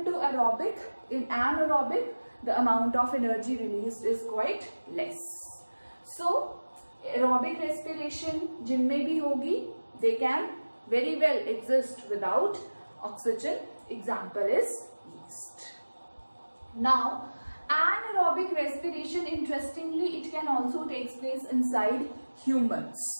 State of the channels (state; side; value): inverted; both; correlation -1.00